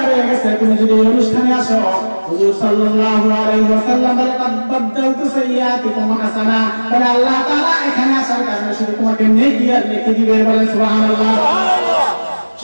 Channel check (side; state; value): both; inverted; correlation -1.00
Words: রয়ে গেছে। তুমি যদি এই অনুষ্ঠানে আসো, হুজুর সাল্লাল্লাহু আলাইহি ওয়াসাল্লাম বলে কদ বাদদালতু সাইয়্যাতিকুম হাসানা, বলে আল্লাহ তাআলা এখানে আসার কারণে শুধু তোমাকে নেকি আর নেকি দিবে, বলে সুবহানাল্লাহ।